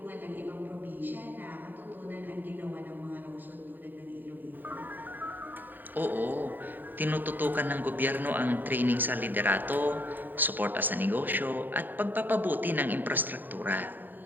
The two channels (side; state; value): left; late; 0.090 ms